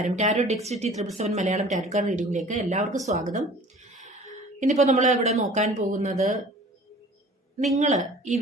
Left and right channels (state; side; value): normal; both; correlation 0.47